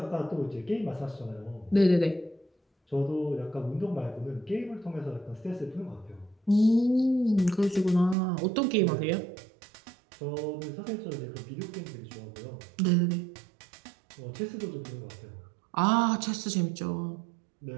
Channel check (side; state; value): left; drops out; at 8.2 s